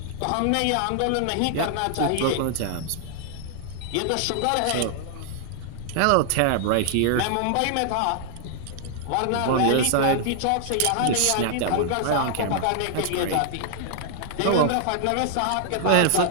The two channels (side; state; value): both; different; correlation 0.00